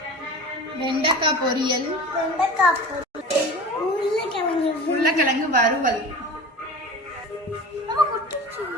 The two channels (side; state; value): both; normal; correlation 0.35